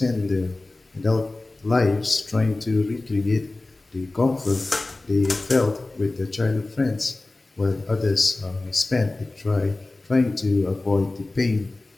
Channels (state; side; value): quieter; right; 3.0 dB